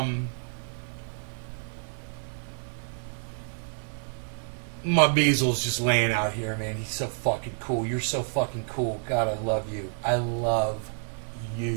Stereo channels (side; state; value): left; silent; 59 dB below the other